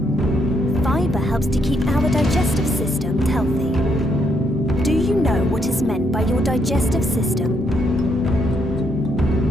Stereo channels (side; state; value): both; normal; correlation 0.75